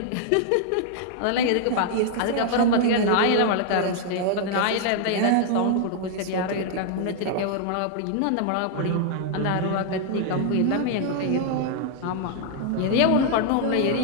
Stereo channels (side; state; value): both; different; correlation 0.00